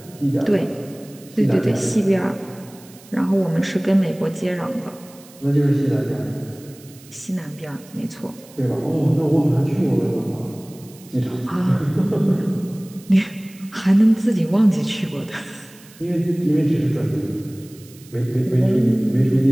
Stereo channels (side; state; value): right; noise; hiss, 23 dB below the sound